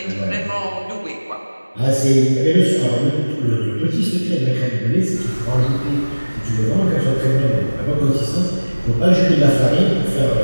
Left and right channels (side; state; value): both; inverted; correlation -1.00